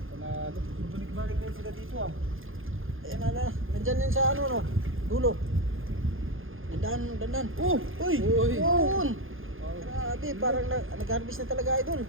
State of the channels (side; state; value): left; late; 0.59 ms